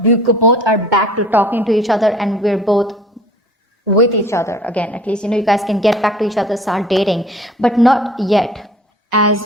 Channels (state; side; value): normal; both; correlation 0.49